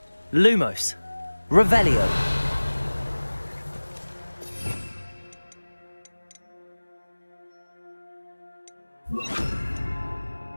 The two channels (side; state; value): both; inverted; correlation -1.00